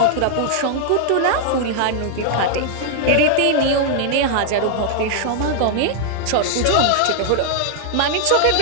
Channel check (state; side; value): different; both; correlation -0.01